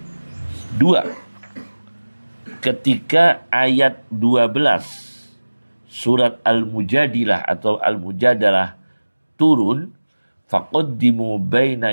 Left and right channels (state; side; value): inverted; both; correlation -1.00